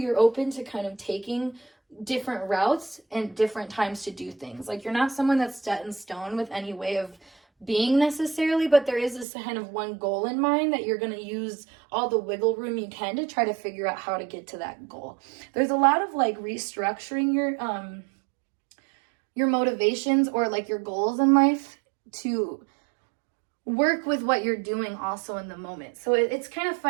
open to kind of taking different routes and different times to do things. Like you're not someone that's set in stone with any way of being necessarily, but there is this kind of one goal in mind that you're going to use all the wiggle room you can to try to figure out how to get to that goal. There's a lot of like restructuring your motivations or like your goals in life to work with what you're doing also in the moment. So it's kind of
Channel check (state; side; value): drops out; left; at 9.2 s